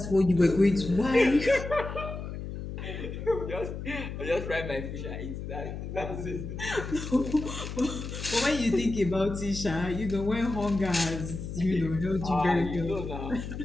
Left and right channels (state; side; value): noise; left; hum, 7 dB below the sound